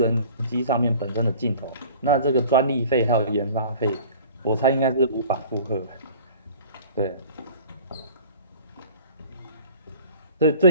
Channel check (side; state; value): both; inverted; correlation -0.46